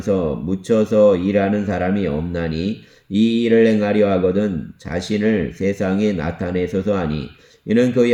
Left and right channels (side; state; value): both; identical; correlation 1.00